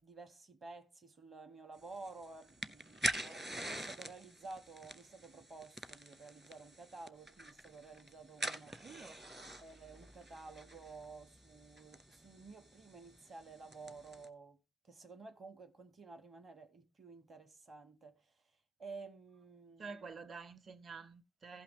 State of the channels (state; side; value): normal; both; correlation 0.83